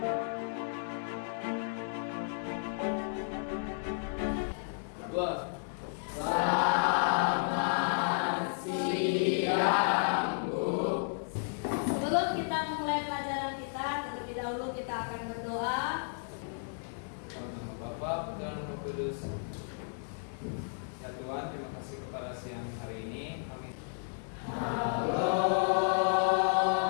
Dua. Selamat siang, Bu. Sebelum kita memulai pelajaran kita, terlebih dahulu kita akan berdoa. Bapak dan Roh Kudus. Ya Tuhan, terima kasih kepada siang hari ini. Amin. Halo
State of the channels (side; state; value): right; silent; digital silence